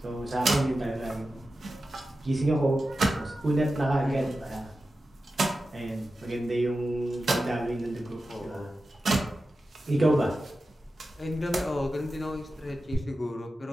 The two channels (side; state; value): both; normal; correlation 0.92